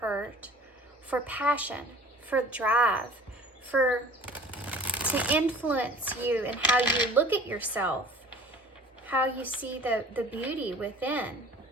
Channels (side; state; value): both; normal; correlation 0.46